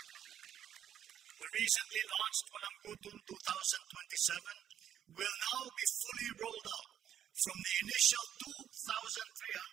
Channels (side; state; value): left; quieter; 9.9 dB